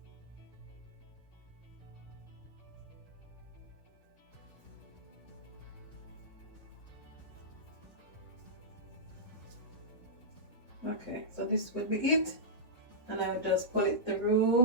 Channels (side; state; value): both; normal; correlation -0.17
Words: Okay, so this will be it, and I will just pull it